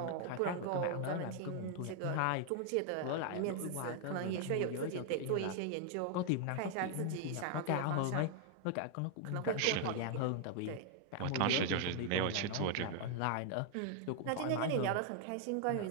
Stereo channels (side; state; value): both; different; correlation 0.00